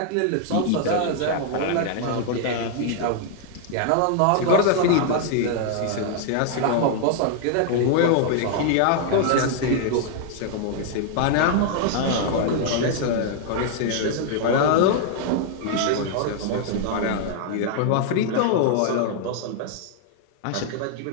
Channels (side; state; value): both; different; correlation -0.01